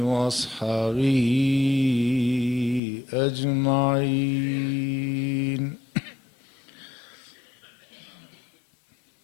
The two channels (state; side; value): drops out; right; at 2.8 s